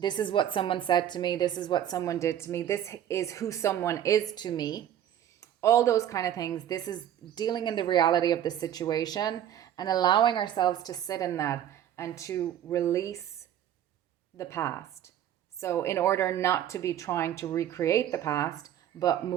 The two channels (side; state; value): left; quieter; 10.8 dB